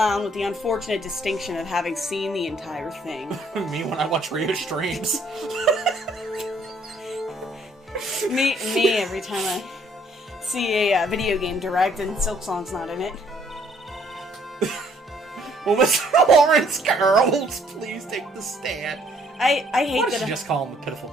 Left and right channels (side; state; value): both; normal; correlation 0.64